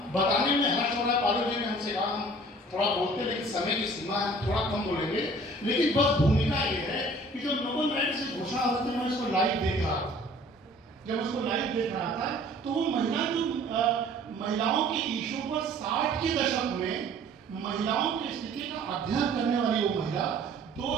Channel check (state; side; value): normal; both; correlation 0.50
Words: बताने में हर्ष हो रहा है, पालू जी ने हमसे कहा हम थोड़ा बोलते लेकिन समय की सीमा है, थोड़ा कम बोलेंगे, लेकिन बस भूमिका ये है कि जब नोबेल प्राइज से घोषणा होती है, मैं इसको लाइव देख रहा था। जब उसको लाइव देख रहा था तो वो महिला जो महिलाओं के इशू पर 60 के दशक में महिलाओं की स्थिति का अध्ययन करने वाली वो महिला